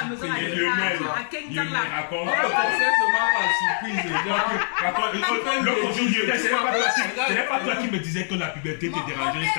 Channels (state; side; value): silent; right; digital silence